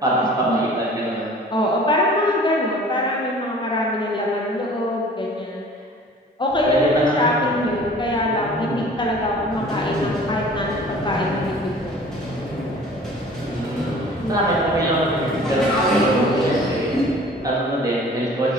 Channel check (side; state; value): both; normal; correlation 0.47